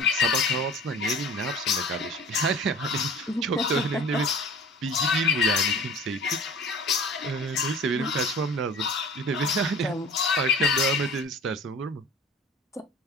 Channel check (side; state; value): both; normal; correlation 0.42